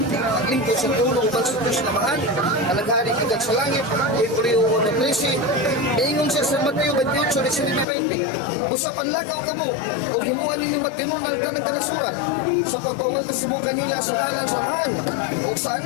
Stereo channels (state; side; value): drops out; right; at 7.9 s